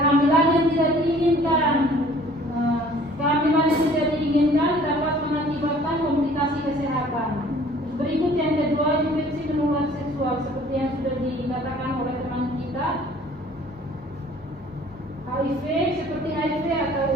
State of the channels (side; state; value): both; normal; correlation 0.53